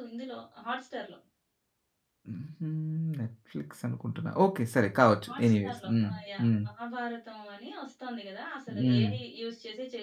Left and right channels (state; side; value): identical; both; correlation 1.00